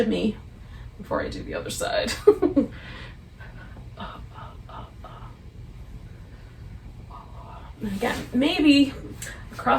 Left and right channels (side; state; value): both; identical; correlation 1.00